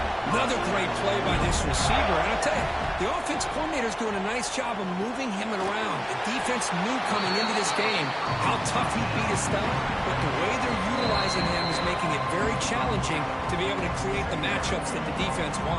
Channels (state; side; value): identical; both; correlation 1.00